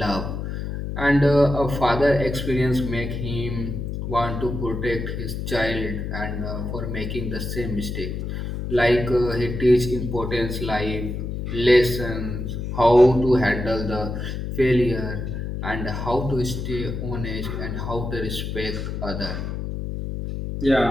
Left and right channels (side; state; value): left; noise; hum, 4 dB below the sound